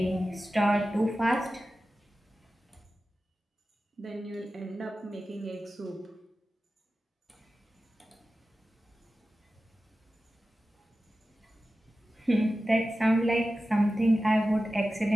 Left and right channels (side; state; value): both; normal; correlation 0.94